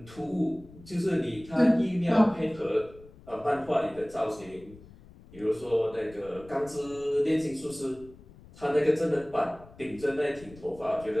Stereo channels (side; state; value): left; noise; rumble, 21 dB below the sound